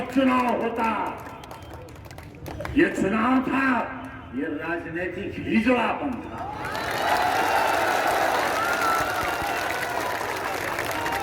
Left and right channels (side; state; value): both; identical; correlation 1.00